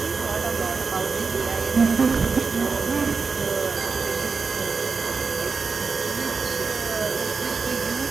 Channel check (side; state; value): left; quieter; 4.8 dB